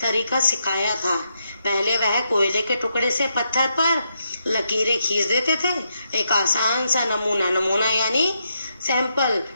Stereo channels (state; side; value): inverted; both; correlation -0.81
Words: तरीका सिखाया था। पहले वह कोयले के टुकड़े से पत्थर पर लकीरें खींच देते थे, एक आसान सा नमूना यानी सैंपल,